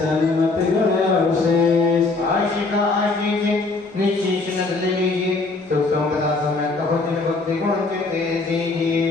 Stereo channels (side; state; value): right; quieter; 3.6 dB